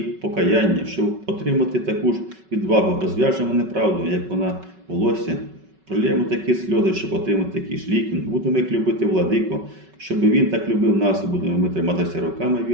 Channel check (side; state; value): left; late; 5.3 ms